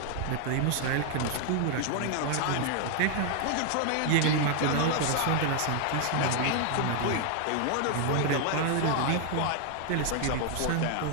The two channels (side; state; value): both; different; correlation 0.00